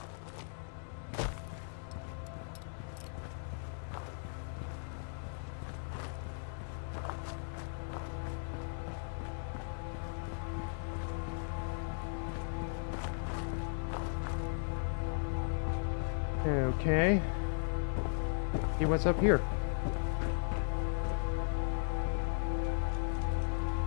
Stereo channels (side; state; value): right; silent; digital silence